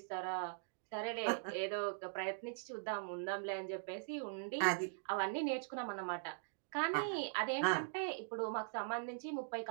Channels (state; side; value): silent; left; digital silence